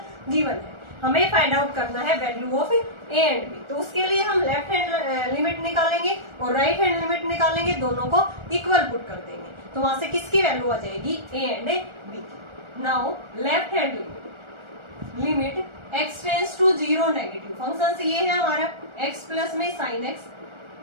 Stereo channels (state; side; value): late; left; 1.4 ms